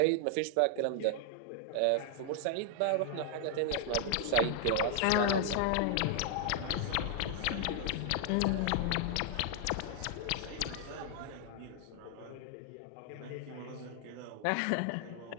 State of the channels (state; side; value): different; both; correlation 0.00